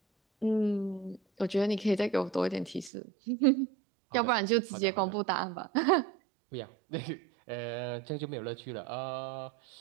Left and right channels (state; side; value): drops out; left; at 2.9 s